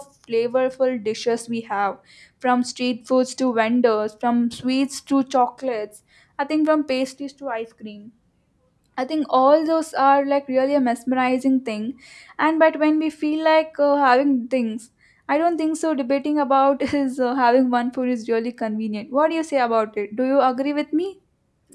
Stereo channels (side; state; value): both; identical; correlation 1.00